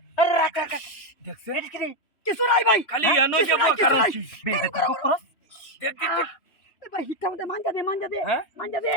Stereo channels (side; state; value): right; late; 2.9 ms